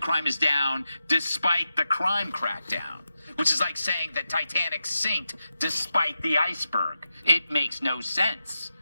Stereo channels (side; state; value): both; inverted; correlation -0.90